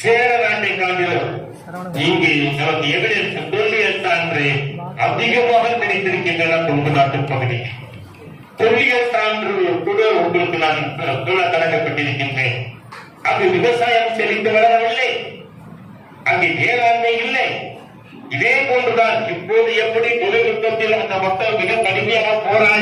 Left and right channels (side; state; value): both; identical; correlation 1.00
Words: சேர நாட்டை காட்டிலும் இங்கு நமக்கு எவிடன்ஸ் தொல்லியல் சான்று அதிகமாக கிடைத்திருக்கின்றன கொங்கு நாட்டு பகுதி. தொல்லியல் சான்று கூட உங்களுக்கு நான் சொல்ல கடமைப்பட்டிருக்கின்றேன். அங்கு விவசாயம் செழித்து வளரவில்லை, அங்கு வேளாண்மை இல்லை. இதே போன்றுதான் இப்போது எப்படி தொழில்நுட்பத்தில் அந்த மக்கள் மிக கடுமையாக